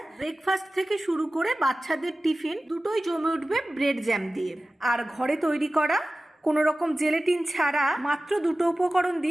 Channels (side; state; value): both; normal; correlation 0.96